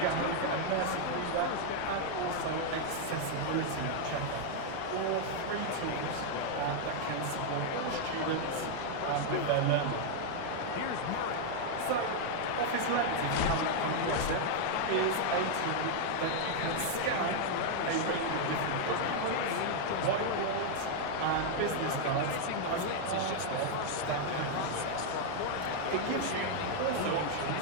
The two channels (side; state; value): both; different; correlation 0.00